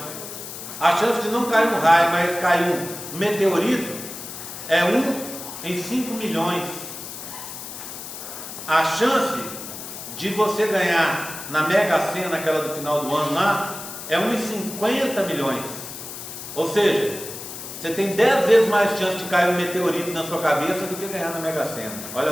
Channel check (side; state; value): left; noise; hiss, 10 dB below the sound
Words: A chance de não cair um raio, mas cair um meteorito, é 1 em 5 milhões. A chance de você ganhar na Mega Sena, aquela do final do ano lá, é 1 em 50 milhões. Ou seja, você tem 10 vezes mais chance de cair um meteorito na sua cabeça do que ganhar na Mega Sena.